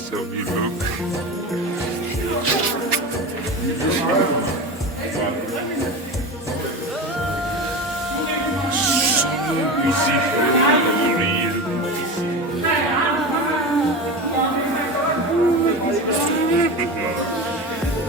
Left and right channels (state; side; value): normal; both; correlation 0.26